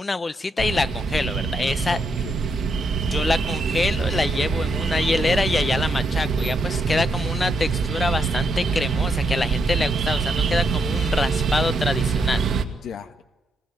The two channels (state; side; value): normal; both; correlation 0.78